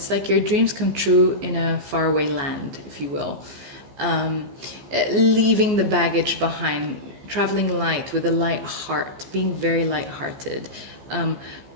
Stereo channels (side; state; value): left; late; 14 ms